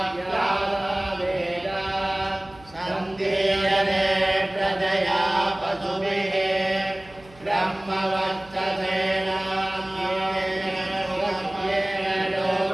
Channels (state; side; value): noise; right; hum, 24 dB below the sound